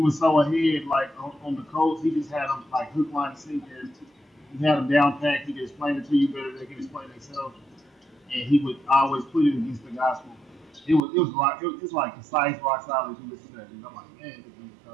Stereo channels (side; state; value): left; drops out; at 11.0 s